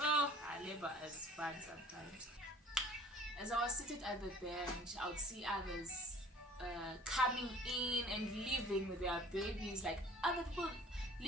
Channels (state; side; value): normal; both; correlation 0.49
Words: labor is fun sometimes. As I was seated at the bench, I would see others coming in and leaving with their babies. Like, other people